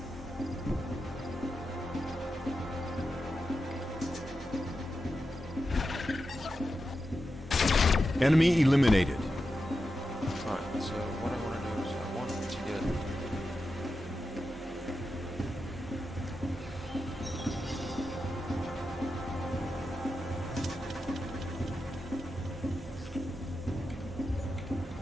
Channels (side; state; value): both; normal; correlation 0.89